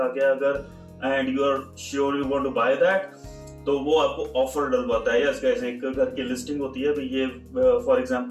गया अगर and you are sure you want to buy that, तो वो आपको ऑफर डलवाता है। यस गाइस, एक घर की लिस्टिंग होती है, भाई ये फॉर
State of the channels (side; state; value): both; identical; correlation 1.00